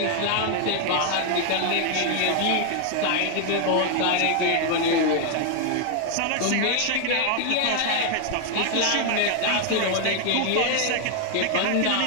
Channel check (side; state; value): both; different; correlation 0.00